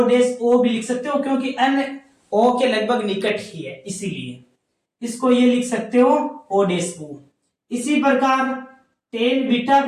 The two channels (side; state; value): both; identical; correlation 1.00